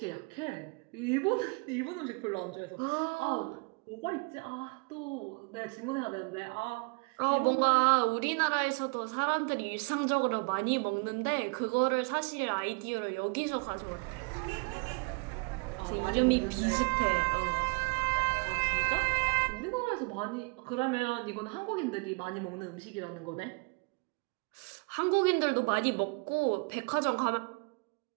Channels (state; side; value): quieter; left; 32.3 dB